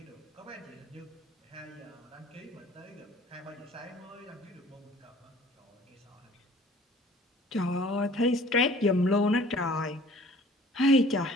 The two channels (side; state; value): both; normal; correlation 0.51